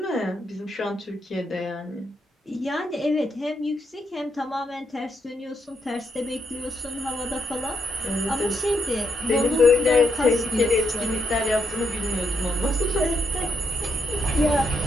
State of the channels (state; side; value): normal; both; correlation 0.78